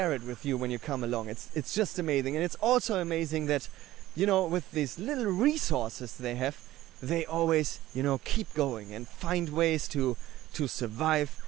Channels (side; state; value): left; quieter; 15.4 dB